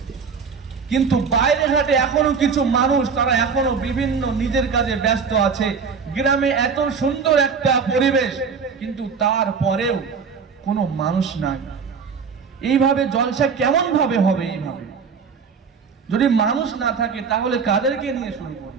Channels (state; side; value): quieter; left; 5.8 dB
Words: কিন্তু বাইরে ঘাটে এখনো কিছু মানুষ, তারা এখনো বিভিন্ন নিজের কাজে ব্যস্ত আছে। গ্রামে এত সুন্দর একটা পরিবেশ, কিন্তু তারপরেও কোনো মানুষ নাই। এইভাবে জলসা কেমন ভাবে হবে? এইভাবে যদি মানুষ না থাকে তাহলে কাদেরকে নিয়ে শুরু